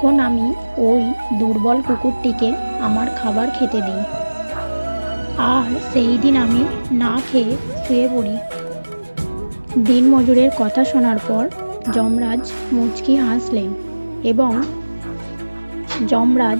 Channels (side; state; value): both; inverted; correlation -1.00